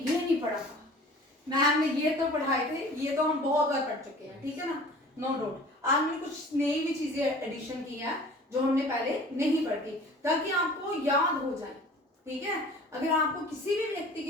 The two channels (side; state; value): both; normal; correlation 0.45